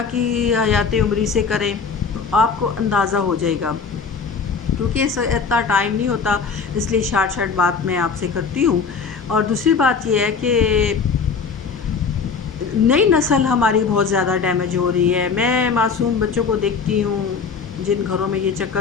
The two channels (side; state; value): right; quieter; 5.5 dB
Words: کی حیات عمری سے کریں، تو آپ کو اندازہ ہو جائے گا، کیونکہ اس اتنا ٹائم نہیں ہوتا، اس لیے شارٹ بات میں آپ سے کرتی ہوں۔ اور دوسری بات یہ ہے کہ نئی نسل ہماری بہت زیادہ ڈیمیج ہو رہی ہے۔ میں معصوم بچوں کو دیکھتی ہوں جن گھروں میں یہ